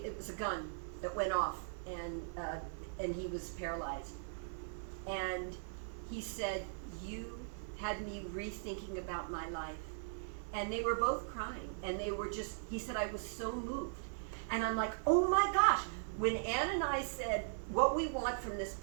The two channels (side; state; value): left; silent; 52 dB below the other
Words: was a gun that went off, and he was paralyzed. And he said, you had me rethinking about my life. And they were both crying, and they were just, he said, I was so moved. And I'm like, oh my gosh. When Anne and I said, what we want from this